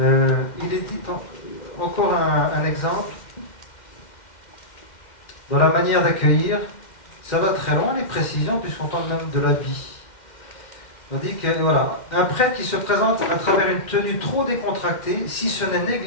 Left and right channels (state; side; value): late; right; 2.1 ms